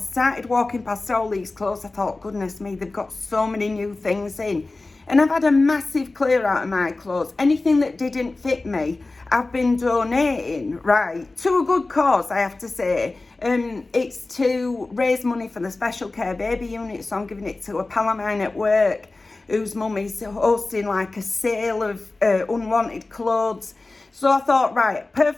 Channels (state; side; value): quieter; right; 3.3 dB